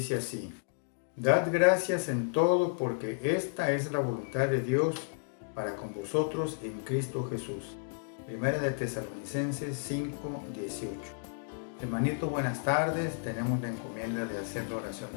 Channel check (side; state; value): right; silent; digital silence